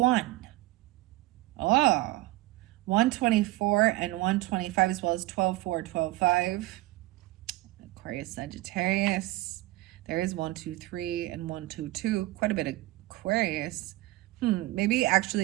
Oh, 124 and 125 as well as 12-4, 12-5. Aquarius, Sagittarius. There is 123 and 122. Quite a bit of Aquarius. Maybe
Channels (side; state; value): left; quieter; 19.0 dB